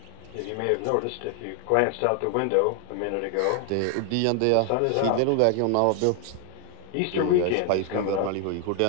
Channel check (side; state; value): both; different; correlation 0.00